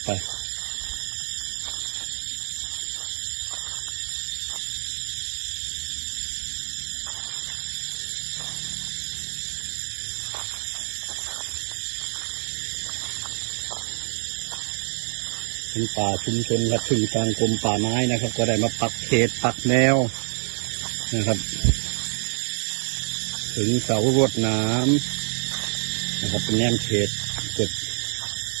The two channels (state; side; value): silent; left; 60 dB below the other